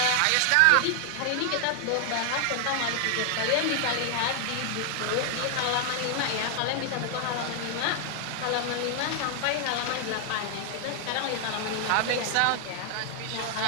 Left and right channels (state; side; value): different; both; correlation 0.00